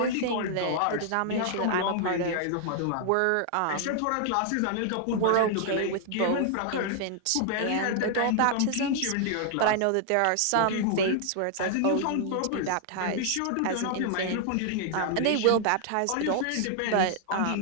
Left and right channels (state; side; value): different; both; correlation 0.00